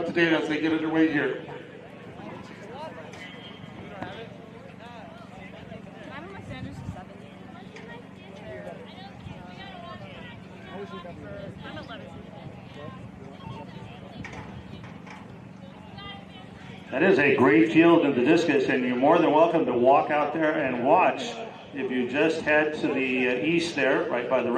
to date as they get underway here. That is a great field in the discus, and you're more than welcome to walk out there and watch. If you just head to the east there, right by the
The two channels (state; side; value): identical; both; correlation 1.00